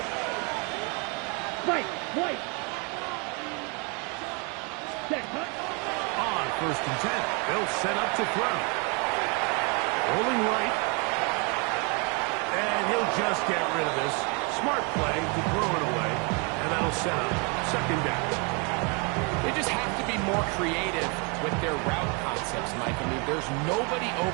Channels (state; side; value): quieter; left; 33.5 dB